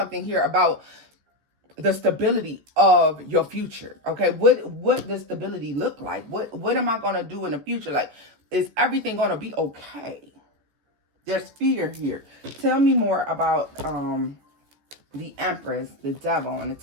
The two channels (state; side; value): late; left; 14 ms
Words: here about the stability of your future. Okay, what does stability look like? What am I going to do in the future? Like, is everything going to be okay? There's fear here. Tell me more about the Empress, the Devil, and the